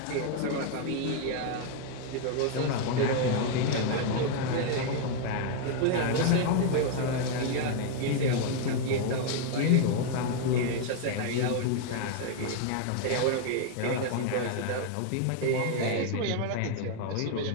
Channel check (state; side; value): different; both; correlation 0.00